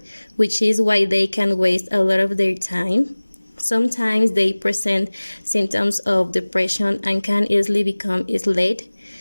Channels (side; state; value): both; inverted; correlation -1.00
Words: which is why they can waste a lot of their time. Sometimes they present symptoms of depression and can easily become isolated.